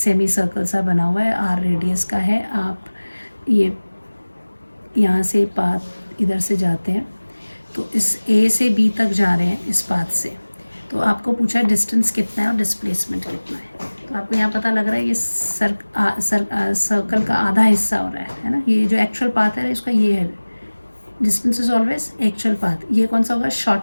सर्कल सा बना हुआ है, आर रेडियस का है। आप ये यहाँ से पाथ इधर से जाते हैं तो इस ए से बी तक जा रहे हैं इस पाथ से, तो आपको पूछा है डिस्टेंस कितना है और डिस्प्लेसमेंट कितना है। तो आपको यहाँ पता लग रहा है ये सर्कल का आधा हिस्सा हो रहा है ना, ये जो एक्चुअल पाथ है इसका ये है, distance is always actual path. ये कौन सा होगा,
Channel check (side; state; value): both; inverted; correlation -1.00